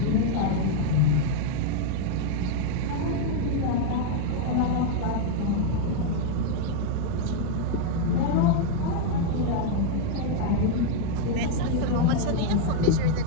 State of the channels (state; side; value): different; both; correlation 0.00